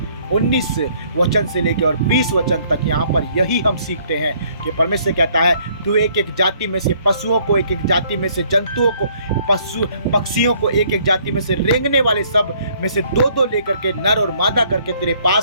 19 वचन से लेकर और 20 वचन तक यहाँ पर यही हम सीखते हैं कि परमेश्वर कहता है तू एक एक जाति में से पशुओं को, एक एक जाति में से जंतुओं को, पक्षियों को, एक एक जाति में से रेंगने वाले सब में से दो दो लेकर के नर और मादा करके तेरे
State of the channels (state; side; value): inverted; both; correlation -0.63